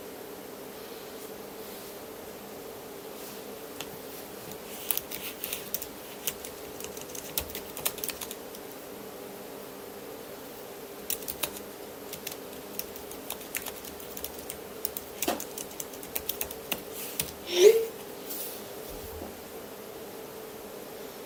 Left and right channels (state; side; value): identical; both; correlation 1.00